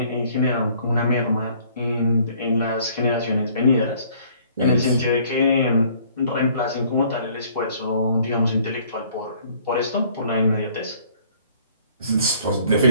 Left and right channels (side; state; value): both; inverted; correlation -0.58